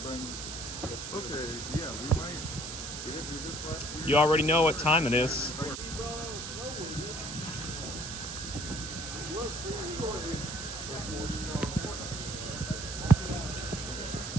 bring this. Okay, yeah, we might. We didn't do this last year. You already know what time it is.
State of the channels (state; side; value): noise; right; hiss, 7 dB below the sound